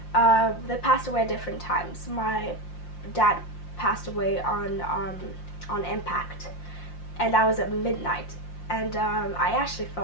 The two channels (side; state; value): right; late; 5.7 ms